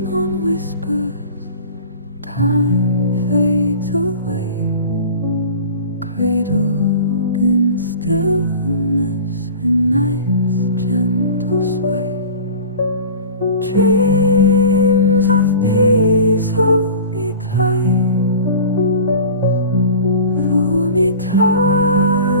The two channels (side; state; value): both; inverted; correlation -0.39